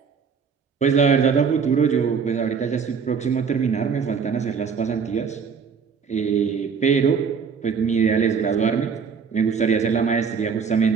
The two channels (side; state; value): left; quieter; 6.1 dB